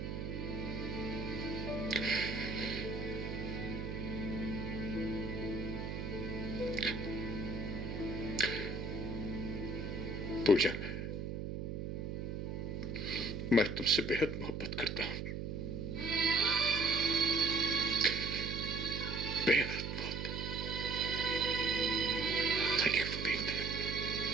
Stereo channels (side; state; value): right; noise; hum, 4 dB below the sound